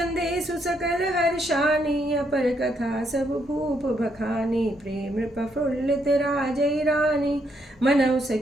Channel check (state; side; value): normal; both; correlation 0.75